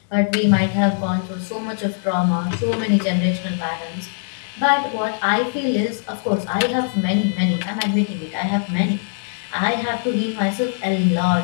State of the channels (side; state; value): right; silent; digital silence